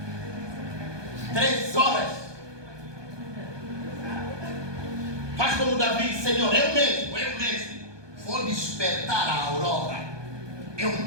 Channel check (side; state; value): left; late; 1.2 ms